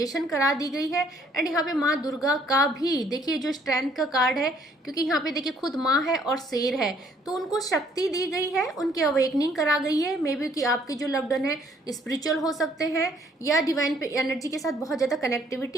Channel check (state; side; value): normal; both; correlation 0.63